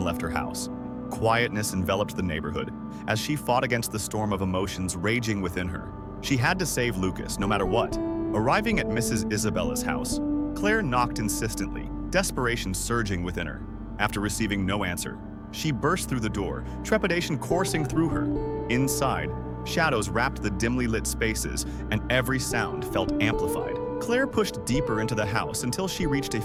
left her house. Quietness enveloped the neighborhood as she fought against the storm of emotions raging within her. She had to save Lucas, no matter what. Arriving at Mrs. Isabella's house, Claire knocked insistently, desperation surging within her. After receiving no answer, she burst through the door, trepidation coursing through her. Inside, Shadows wrapped the dimly lit spaces, and every sound felt amplified. Claire pushed deeper into the house until she reached a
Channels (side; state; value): both; identical; correlation 1.00